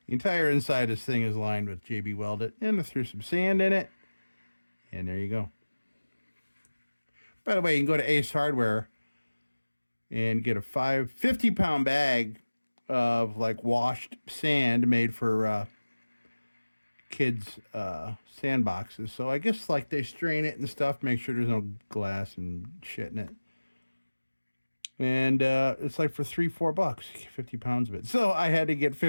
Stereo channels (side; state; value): both; inverted; correlation -1.00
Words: The entire inside of this thing is lined with JB welded, and I threw some sand in it. And there you go. By the way, you can go to Ace Hardware and get a 50-pound bag of like washed sand made for kids' sandboxes. So I guess like they strain it and stuff, make sure there's no glass and shit in it. And it's like for $3-4, 50 pounds of it. So I had to get